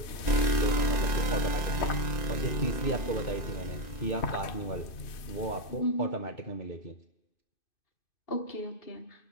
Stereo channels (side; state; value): right; late; 2.5 ms